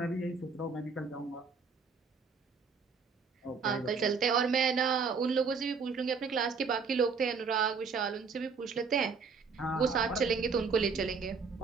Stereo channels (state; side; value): quieter; left; 5.2 dB